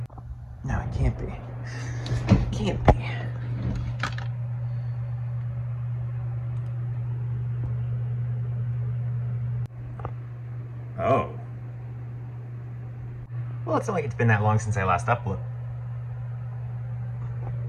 No, it can't be. It can't be. Oh. Well, it's not like it's been that long since I last uploaded.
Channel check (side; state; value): both; identical; correlation 1.00